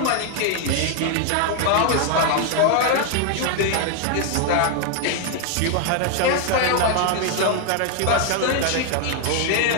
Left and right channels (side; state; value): both; different; correlation 0.00